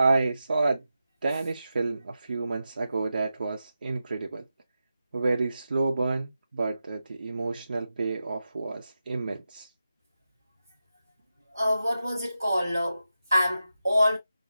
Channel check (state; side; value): inverted; both; correlation -0.91